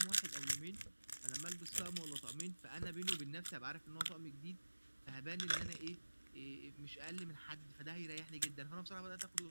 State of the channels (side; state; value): both; inverted; correlation -1.00